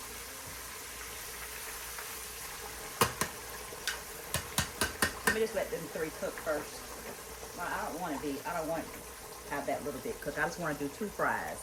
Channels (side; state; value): both; identical; correlation 1.00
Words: Let me just let them 3 cook first. Well, I don't want to have that little bit cooked. I just want to do 2 fries.